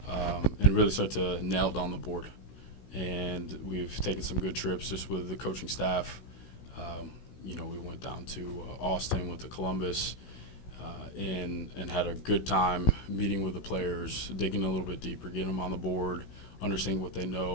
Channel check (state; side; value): late; right; 16 ms